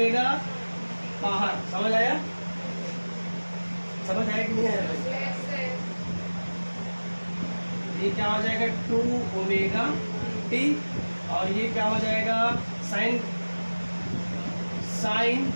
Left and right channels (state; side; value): inverted; both; correlation -1.00